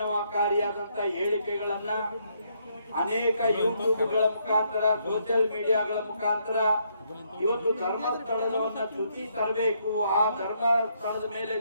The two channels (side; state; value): both; inverted; correlation -0.73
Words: ಹೇಳಿಕೆಗಳನ್ನ ಅನೇಕ ಯೂಟ್ಯೂಬ್ಗಳ ಮುಖಾಂತರ, ಸೋಷಿಯಲ್ ಮೀಡಿಯಾಗಳ ಮುಖಾಂತರ ಇವತ್ತು ಧರ್ಮಸ್ಥಳವನ್ನ ಚ್ಯುತಿ ತರಬೇಕು, ಆ ಧರ್ಮಸ್ಥಳದ ಮೇಲೆ